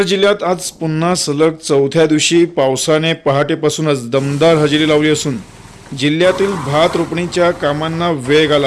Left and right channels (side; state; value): both; identical; correlation 1.00